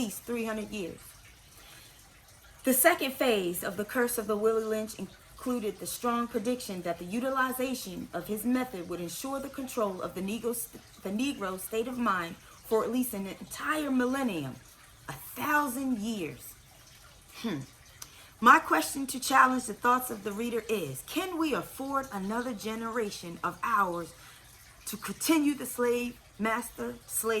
300 years. The second phase of the curse of the Willie Lynch included the strong prediction that the utilization of his method would ensure the control of the Negro state of mind for at least an entire millennium, 1,000 years. My question to challenge the thoughts of the reader is, can we afford another generation of ours to continue the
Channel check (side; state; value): both; identical; correlation 1.00